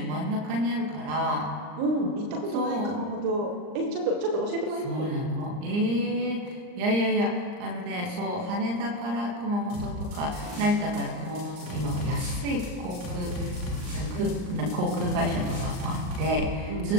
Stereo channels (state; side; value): late; left; 39 ms